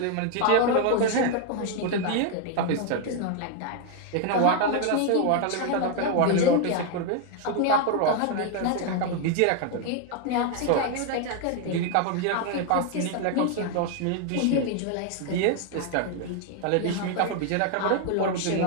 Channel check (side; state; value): both; different; correlation 0.00